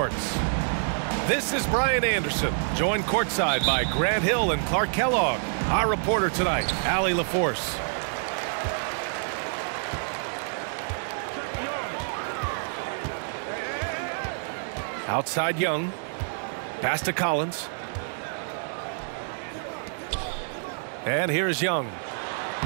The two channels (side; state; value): left; silent; digital silence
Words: This is Brian Anderson, joined courtside by Grant Hill and Clark Kellogg. Our reporter tonight, Allie LaForce. Outside Young. Pass to Collins. And here's Young.